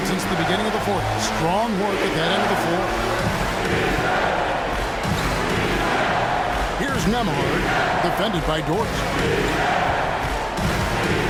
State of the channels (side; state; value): both; identical; correlation 1.00